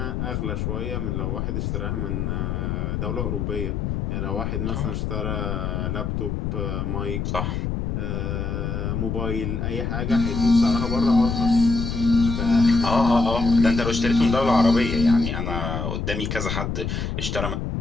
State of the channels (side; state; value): left; noise; rumble, 2 dB below the sound